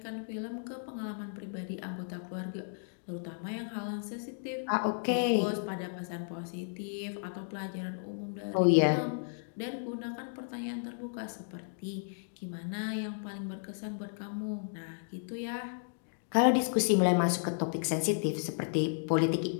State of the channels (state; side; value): silent; right; digital silence